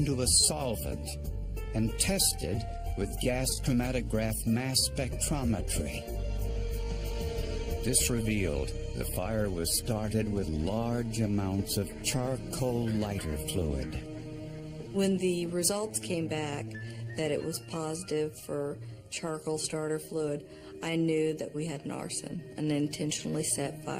a solvent and tested with gas chromatograph mass spectrometry. This revealed the fire was started with large amounts of charcoal lighter fluid. When the results came back that it was positive for charcoal starter fluid, I knew that we had an arson, an intentionally set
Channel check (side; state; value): both; identical; correlation 1.00